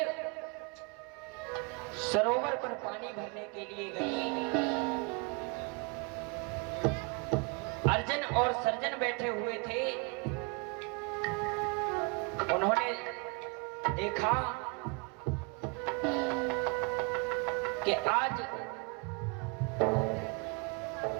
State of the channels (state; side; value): quieter; left; 30.6 dB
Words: सरोवर पर पानी भरने के लिए गई। अर्जन और सर्जन बैठे हुए थे। उन्होंने देखा कि आज